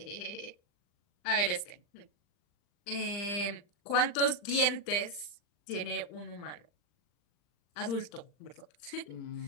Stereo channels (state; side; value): late; right; 40 ms